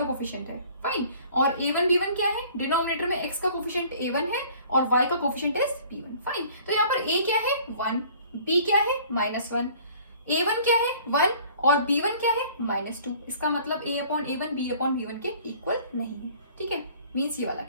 कोफिशिएंट है. फाइन, और a1 b1 क्या है डिनोमिनेटर में x का कोफिशिएंट a1 है और y का कोफिशिएंट है b1. फाइन, तो यहाँ पर a क्या है 1, b क्या है -1, a1 क्या है 1 और b1 क्या है -2. इसका मतलब a upon a1 b upon b1 के इक्वल नहीं है. ठीक है, मींस ये वाला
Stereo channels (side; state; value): both; inverted; correlation -0.52